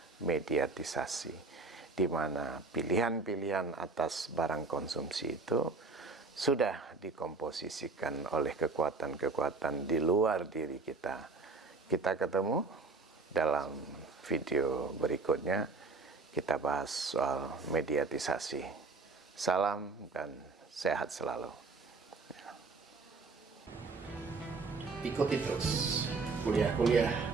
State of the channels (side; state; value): left; quieter; 4.0 dB